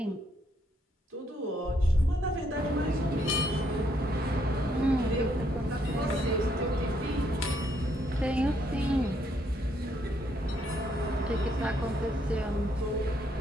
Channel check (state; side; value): normal; both; correlation 0.72